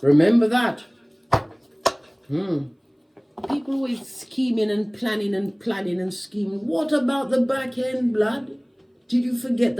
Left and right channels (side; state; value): both; identical; correlation 1.00